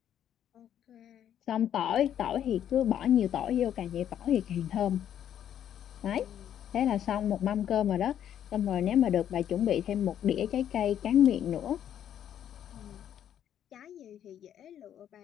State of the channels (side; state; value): right; quieter; 10.1 dB